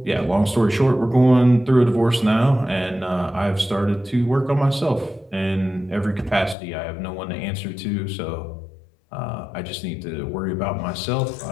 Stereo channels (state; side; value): drops out; right; at 6.6 s